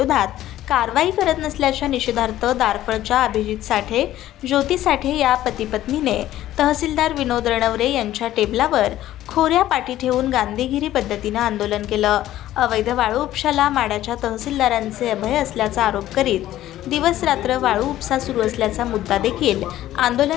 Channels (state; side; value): quieter; right; 13.8 dB